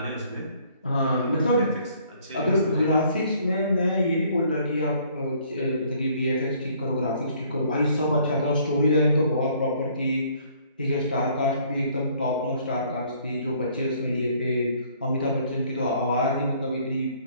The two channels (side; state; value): both; inverted; correlation -0.61